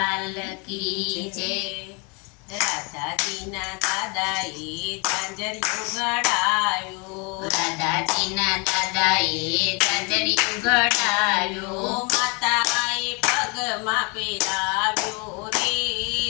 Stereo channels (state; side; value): quieter; right; 31.8 dB